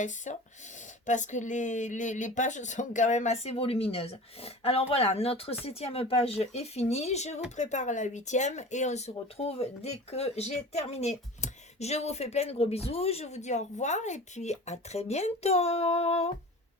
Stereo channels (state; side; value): normal; both; correlation 0.36